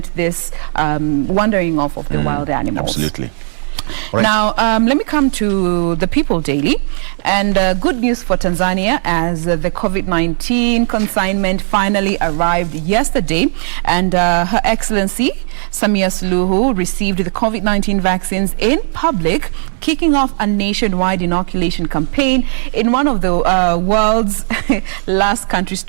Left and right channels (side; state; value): left; silent; 67 dB below the other